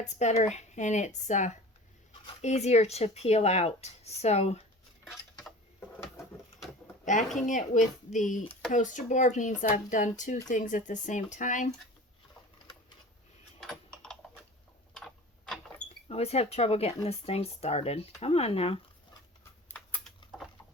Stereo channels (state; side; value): normal; both; correlation 0.39